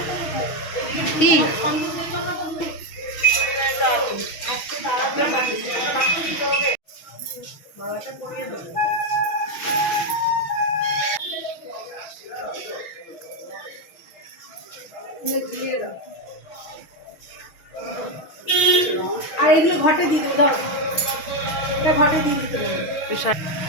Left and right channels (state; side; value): late; right; 6.2 ms